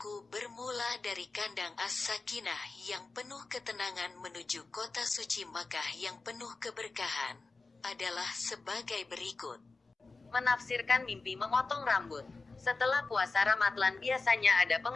bermula dari kandang As-Sakinah yang penuh ketenangan menuju kota suci Makkah yang penuh keberkahan, adalah sebagai berikut. Menafsirkan mimpi memotong rambut. Setelah puasa Ramadhan biasanya ada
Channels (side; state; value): right; quieter; 3.8 dB